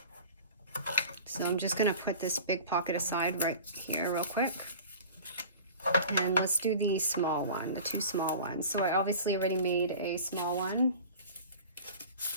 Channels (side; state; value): both; inverted; correlation -0.40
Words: So I'm just gonna put this big pocket aside right here real quick. And let's do the small one, the 2 small ones. So I obviously already made a small one